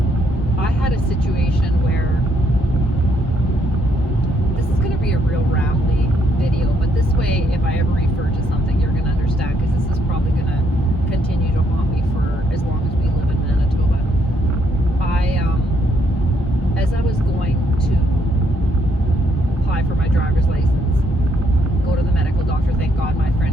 I had a situation where, this is going to be a real rambly video, but this way, if I ever refer to something, you're going to understand, because this is probably going to continue to haunt me for as long as we live in Manitoba. As I was going to apply for my driver's license, go to the medical doctor, thank God my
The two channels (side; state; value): both; normal; correlation 0.73